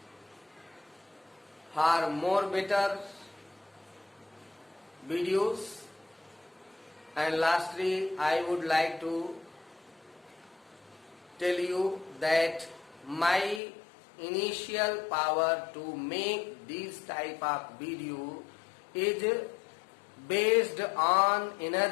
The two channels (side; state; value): right; drops out; at 13.6 s